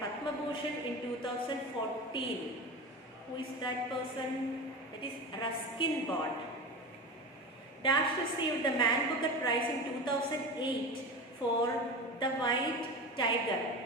Padma Bhushan in 2014. Who is that person? That is Ruskin Bond. Dash received the Man Booker Prize in 2008 for The White Tiger.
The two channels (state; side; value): normal; both; correlation 0.27